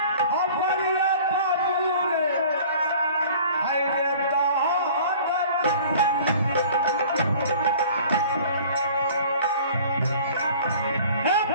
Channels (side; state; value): both; inverted; correlation -0.47